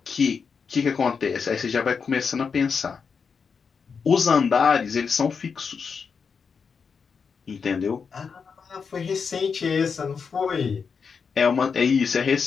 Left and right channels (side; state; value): right; quieter; 5.8 dB